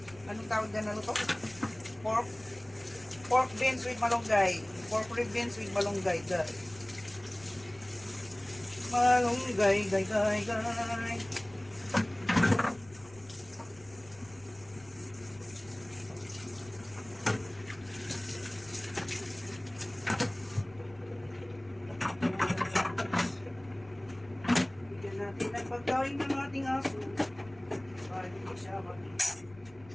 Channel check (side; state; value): left; noise; rumble, 23 dB below the sound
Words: Anong tawag na luto? Pork beans with malunggay. Pork rib beans with malunggay. Malunggay, gay. Bigyan natin ng pagkain ng ating aso. Para hindi siya Uy,